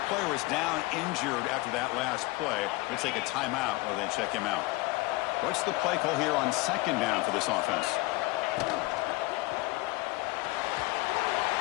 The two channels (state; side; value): quieter; right; 22.3 dB